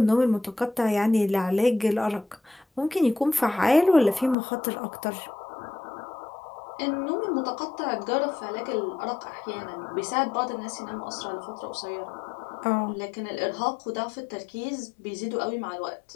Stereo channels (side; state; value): right; drops out; at 4.4 s